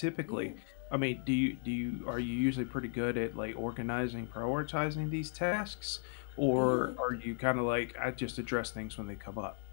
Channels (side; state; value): right; silent; 54 dB below the other